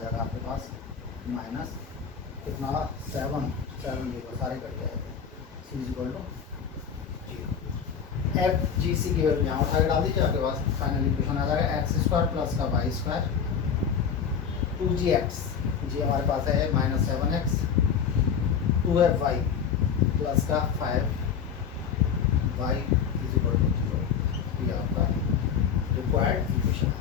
आपके पास माइनस कितना 7 0 सारे कट जाएंगे, c is equal to 0। F G C की वैल्यू यहाँ उठा के डाल दीजिए, आपके पास फाइनल इक्वेशन आ जाएगा x² प्लस का y² 2gx, जी हमारे पास है -7x, 2fy प्लस का 5y इज इक्वल टू 0। ये आपका रिक्वायर्ड इक्वेशन आ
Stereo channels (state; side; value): quieter; right; 7.2 dB